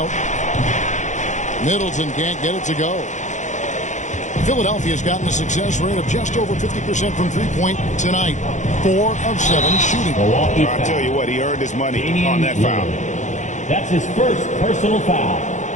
Middleton can't get it to go. Philadelphia's gotten a success rate of just over 50% from three-point tonight. 4 of 7 shooting. I'll tell you what, he earned his money on that foul. That's his first personal foul.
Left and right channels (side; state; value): right; late; 0.35 ms